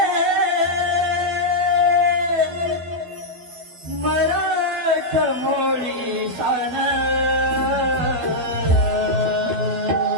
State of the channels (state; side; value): late; left; 12 ms